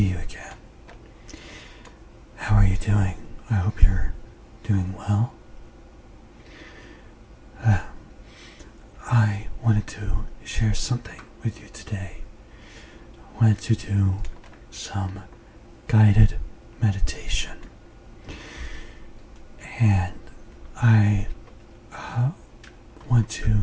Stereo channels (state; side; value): identical; both; correlation 1.00